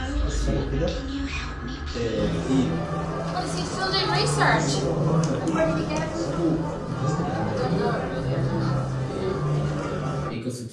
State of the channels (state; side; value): identical; both; correlation 1.00